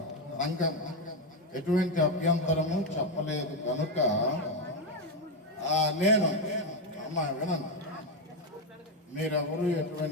సంఘం ఎటువంటి అభ్యంతరము చెప్పలేదు కనుక నేను అమ్మా వినండి, మీరెవరు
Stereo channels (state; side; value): normal; both; correlation 0.08